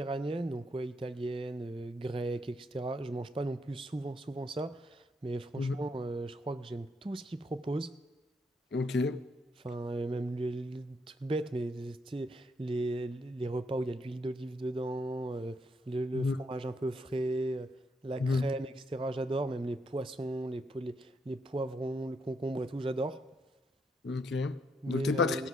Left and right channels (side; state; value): both; normal; correlation 0.76